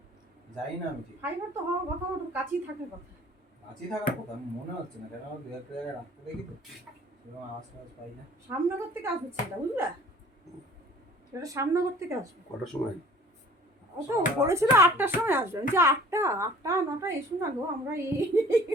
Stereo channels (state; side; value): normal; both; correlation 0.50